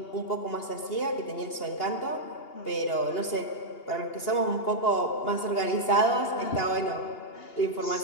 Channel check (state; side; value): late; right; 2.8 ms